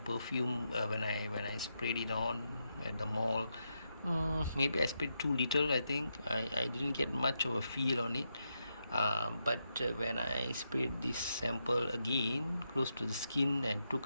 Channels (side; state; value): both; inverted; correlation -0.84